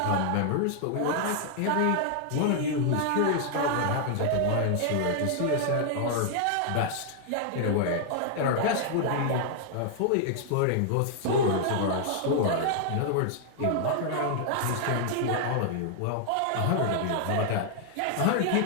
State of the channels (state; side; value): different; both; correlation 0.00